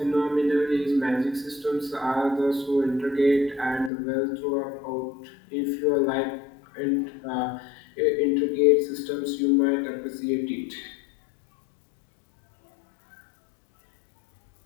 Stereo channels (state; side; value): drops out; right; at 3.9 s